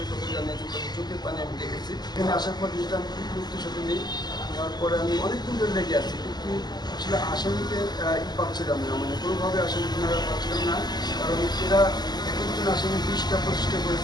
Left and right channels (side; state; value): right; late; 0.20 ms